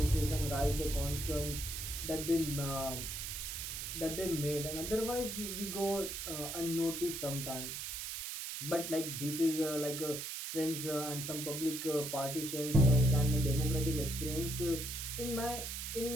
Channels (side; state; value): right; noise; hiss, 5 dB below the sound